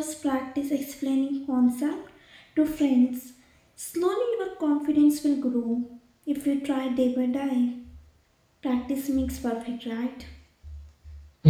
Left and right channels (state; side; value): identical; both; correlation 1.00